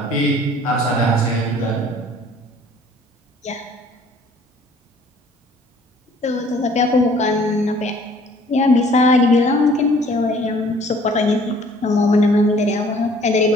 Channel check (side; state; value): both; normal; correlation 0.55